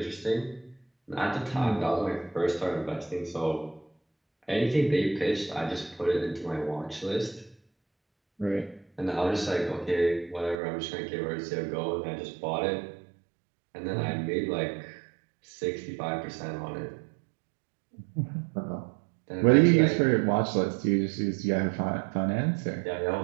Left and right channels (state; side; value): drops out; left; at 10.6 s